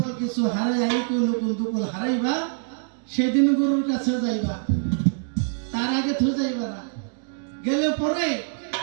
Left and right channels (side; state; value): left; silent; digital silence